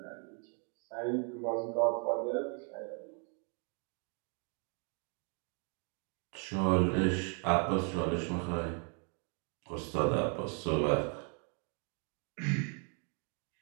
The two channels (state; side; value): quieter; left; 39.9 dB